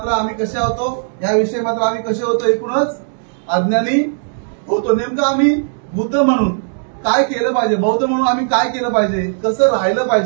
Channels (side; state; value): left; silent; digital silence